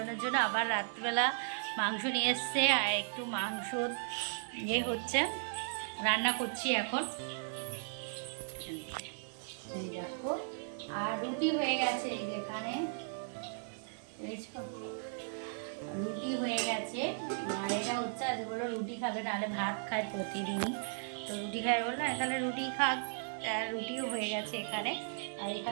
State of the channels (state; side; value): silent; left; digital silence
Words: জন্য আবার রাত্রিবেলা মাংস নিয়ে এসছে আর একটু মাংস হচ্ছে, রান্না করছি এখন। এই দেখো আর রুটি হয়ে গেছে, এই যেখানে রুটি হয়ে গেছে। আর এটা হচ্ছে আজ বললো রুটি খাবে, নাহলে ভাত খায় প্রতিদিনই, তো রুটি খায় বললো তাহলে রুটি খাক। আর রুটিও হয়ে গেছে এখানে। আর